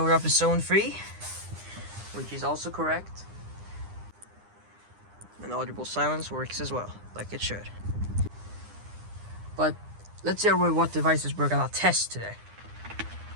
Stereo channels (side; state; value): left; late; 9.8 ms